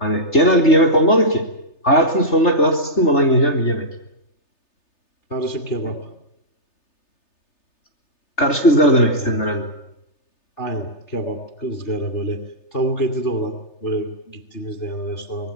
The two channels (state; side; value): late; right; 3.3 ms